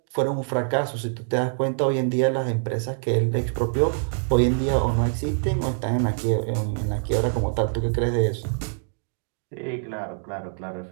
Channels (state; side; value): silent; left; digital silence